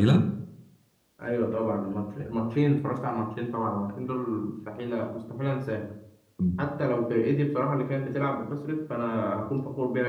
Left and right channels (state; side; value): identical; both; correlation 1.00